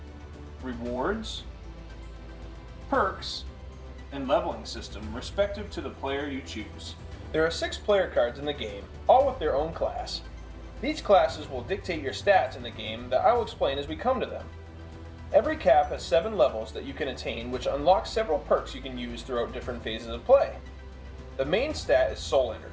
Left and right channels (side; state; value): both; identical; correlation 1.00